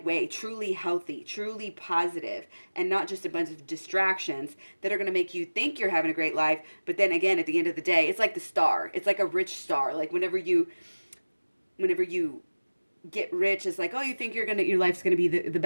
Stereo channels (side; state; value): both; inverted; correlation -1.00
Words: way, truly healthy, truly positive, and not just a bunch of distractions that are going to make you think you're having a great life. But then again, at the end of the day, it's like the star. It's like a rich star. Like whenever you get rich, it's like, you think your life's going to be the